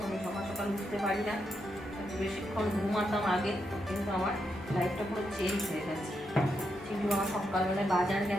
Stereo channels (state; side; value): normal; both; correlation 0.82